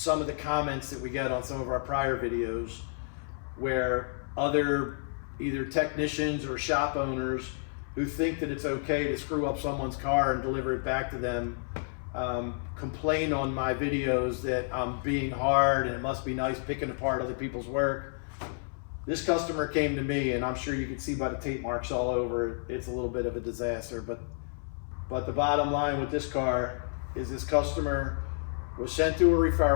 of the comments that we get on some of our prior videos where other either technicians or shop owners who think that it's okay to screw up someone's car and deliver it back to them complain on my videos that I'm being hard and it must be nice picking apart other people's work. This customer came to me, and I'm sure you can see by the tape marks all over it, it's a little bit of a disaster, but the bottom line with this car is this customer was sent to a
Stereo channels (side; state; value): right; silent; 58 dB below the other